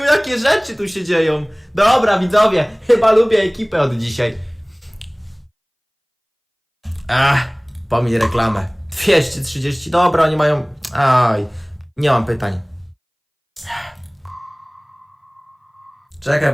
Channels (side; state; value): both; identical; correlation 1.00